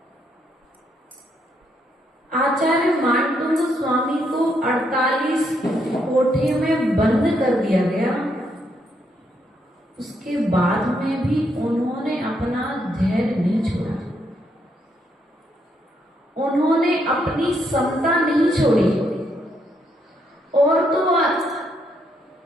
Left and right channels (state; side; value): normal; both; correlation 0.76